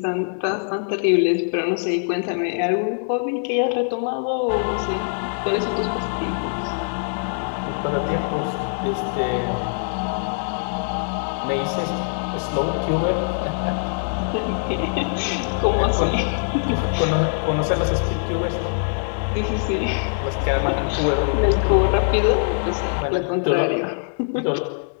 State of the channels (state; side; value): silent; right; digital silence